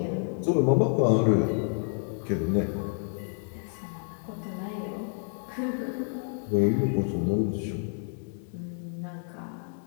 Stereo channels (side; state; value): right; silent; 59 dB below the other